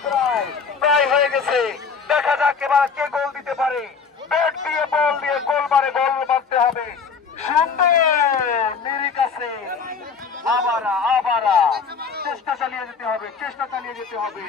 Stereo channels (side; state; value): right; quieter; 5.6 dB